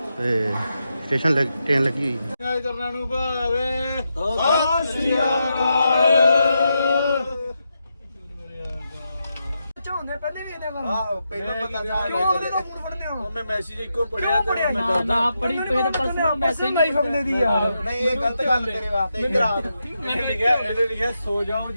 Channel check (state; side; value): inverted; both; correlation -0.85